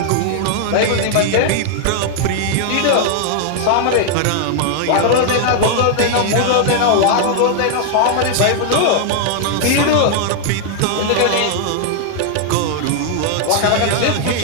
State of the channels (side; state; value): both; different; correlation 0.00